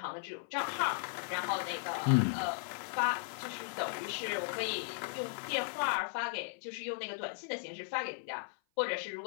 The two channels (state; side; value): silent; right; 53 dB below the other